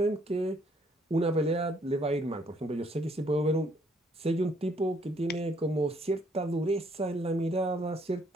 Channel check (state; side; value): normal; both; correlation 0.67